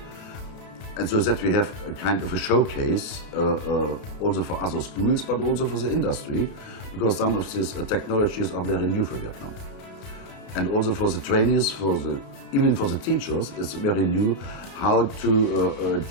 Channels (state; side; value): late; right; 32 ms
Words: And so that we have a kind of a showcase also for other schools, but also for the industry, because some of these technologies are very new for Vietnam. And also for the trainees, even for the teachers, it's very new how to